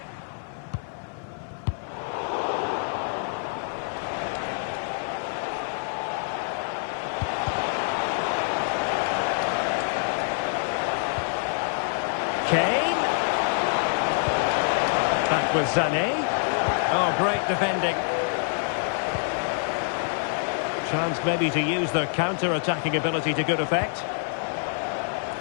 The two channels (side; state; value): right; silent; 57 dB below the other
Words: Kane. Back with Sané. Oh, great defending. Chance maybe to use their counter-attacking ability to good effect.